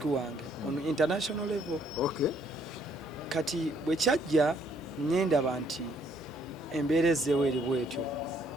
wange on international level. Okay. Kati bwe kyajja nyendaba nti embeera ezzeewo eri bwetyo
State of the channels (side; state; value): both; normal; correlation 0.67